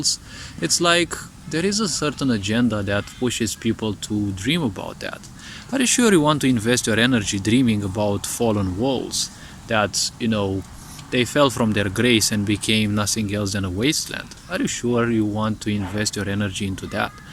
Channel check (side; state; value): both; identical; correlation 1.00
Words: It's like there is a certain agenda that pushes people to dream about that. Are you sure you want to invest your energy dreaming about fallen worlds that, they fell from their grace and became nothing else than a wasteland? Are you sure you want to invest your energy into that?